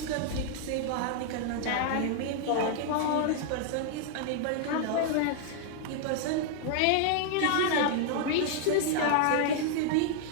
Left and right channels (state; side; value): different; both; correlation -0.01